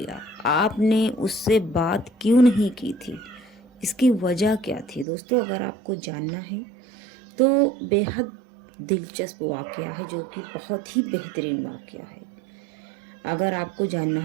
आपने उससे बात क्यों नहीं की थी? इसकी वजह क्या थी? दोस्तों, अगर आपको जानना है तो बेहद दिलचस्प वाकया है, जो कि बहुत ही बेहतरीन वाकया है। अगर आपको जानना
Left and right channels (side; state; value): left; drops out; at 5.1 s